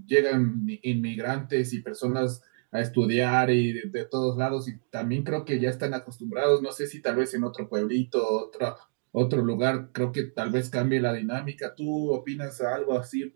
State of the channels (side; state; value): left; silent; digital silence